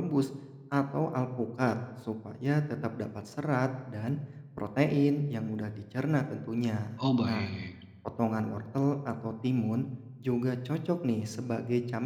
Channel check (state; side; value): identical; both; correlation 1.00